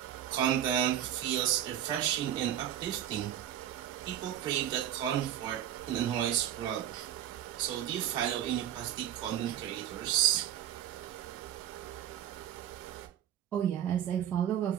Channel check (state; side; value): quieter; left; 10.9 dB